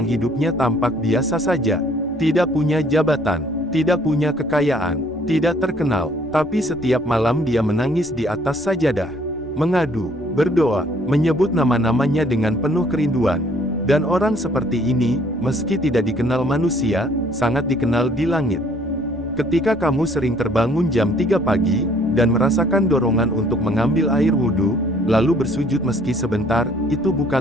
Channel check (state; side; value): normal; both; correlation 0.60